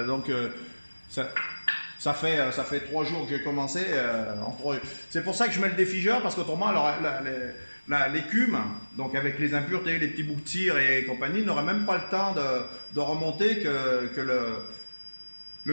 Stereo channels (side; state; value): both; inverted; correlation -1.00